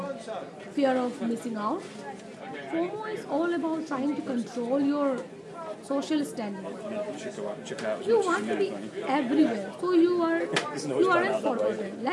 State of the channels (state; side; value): identical; both; correlation 1.00